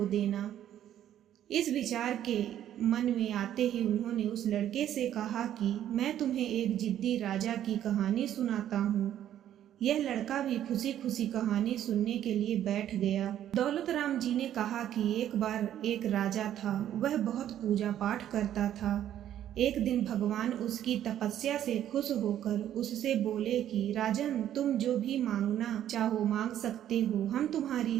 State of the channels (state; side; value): quieter; left; 11.1 dB